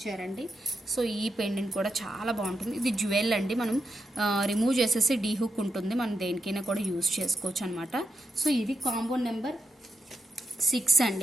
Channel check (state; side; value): normal; both; correlation 0.84